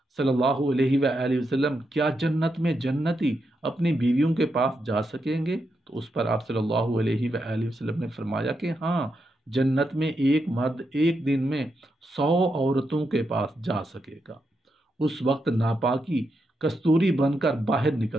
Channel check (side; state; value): both; normal; correlation 0.84